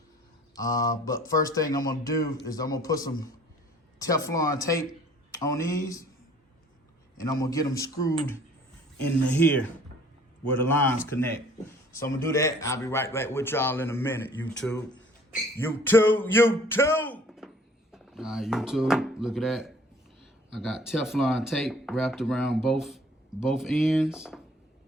But first thing I'm gonna do is I'm gonna put some Teflon tape on these and I'm gonna get them screwed into here where the lines connect. So I'm gonna do that. I'll be right back with y'all in a minute, YouTube. YouTube! All right, YouTube, look at that. I got Teflon tape wrapped around both ends.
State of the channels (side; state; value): both; normal; correlation 0.54